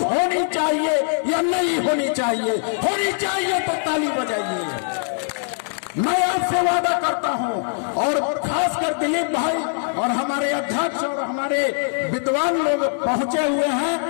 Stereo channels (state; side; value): silent; right; digital silence